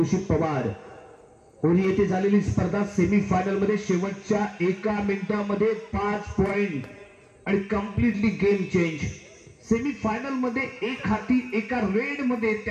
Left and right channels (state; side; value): identical; both; correlation 1.00